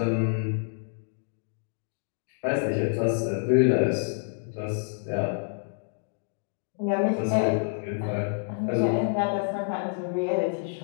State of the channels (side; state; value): right; silent; digital silence